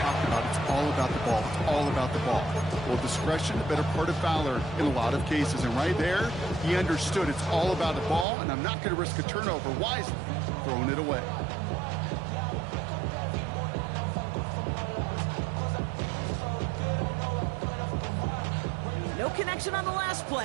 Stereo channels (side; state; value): left; drops out; at 8.2 s